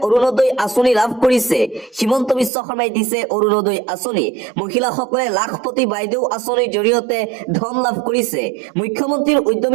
অৰুণোদয় আঁচনি লাভ কৰিছে হিমন্ত বিশ্ব শৰ্মাই দিছে অৰুণোদয় আঁচনি মহিলাসকলে লাখপতি বাইদেউ আঁচনিৰ জৰিয়তে ধন লাভ কৰিছে মুখ্যমন্ত্ৰীৰ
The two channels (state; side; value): drops out; left; at 2.5 s